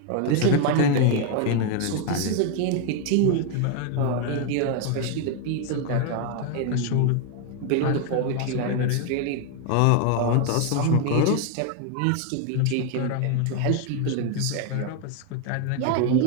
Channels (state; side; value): different; both; correlation 0.01